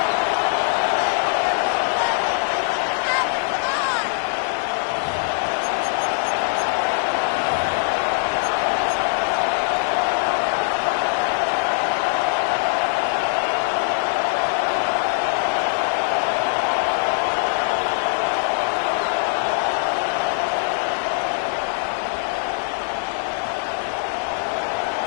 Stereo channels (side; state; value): right; silent; digital silence